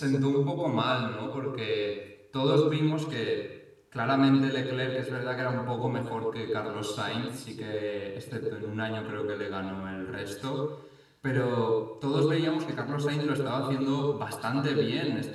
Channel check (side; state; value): both; identical; correlation 1.00